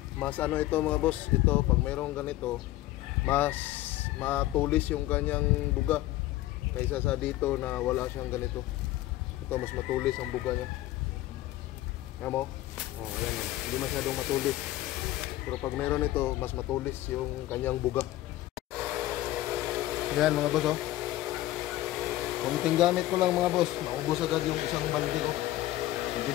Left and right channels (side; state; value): right; quieter; 15.8 dB